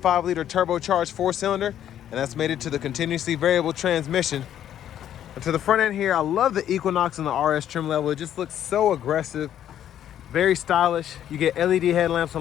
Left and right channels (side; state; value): right; quieter; 10.7 dB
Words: liter turbocharged 4-cylinder, and that's mated to the continuously variable transmission. And to the front end here, I love the Equinox in the RS trim level. It just looks so aggressive, very stylish. You get LED headlamps